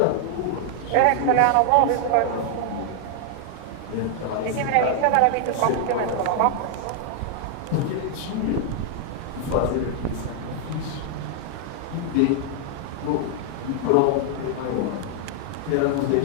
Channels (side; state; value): both; different; correlation 0.00